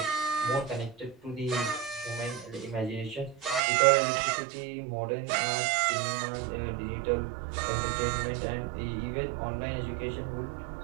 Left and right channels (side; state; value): left; drops out; at 3.6 s